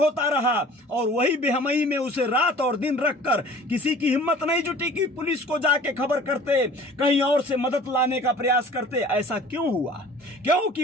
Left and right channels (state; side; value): normal; both; correlation 0.47